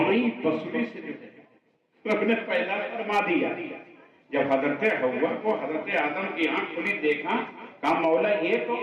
پسلی سے جو ہے اپنے پہلا فرما دیا۔ جب حضرت حوا کو حضرت آدم کی آنکھ کھلی دیکھا، کہا مولا یہ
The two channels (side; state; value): both; identical; correlation 1.00